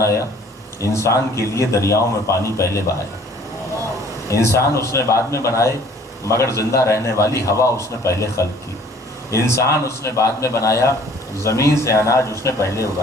انسان کے لیے دریاؤں میں پانی پہلے بہایا۔ انسان اس نے بعد میں بنائے، مگر زندہ رہنے والی ہوا اس نے پہلے خلق کی۔ انسان اس نے بعد میں بنایا، زمین سے اناج اس نے پہلے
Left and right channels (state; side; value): normal; both; correlation 0.54